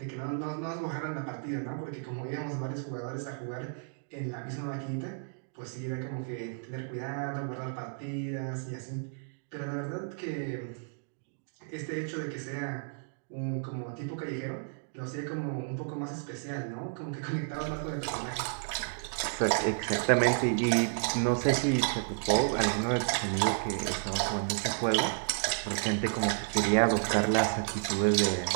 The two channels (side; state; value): left; silent; digital silence